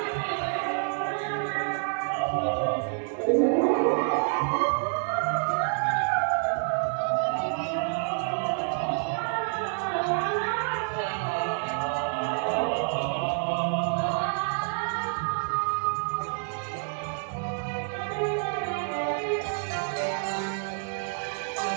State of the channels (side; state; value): left; silent; 59 dB below the other